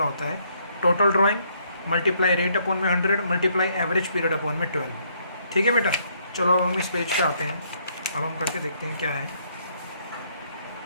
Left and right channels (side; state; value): both; inverted; correlation -0.69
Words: होता है, total drawing multiply rate upon में 100 मल्टीप्लाई एवरेज पीरियड अपॉन में 12। ठीक है बेटा। चलो अब हम इस पेज पे आते हैं, अब हम करके देखते हैं क्या है।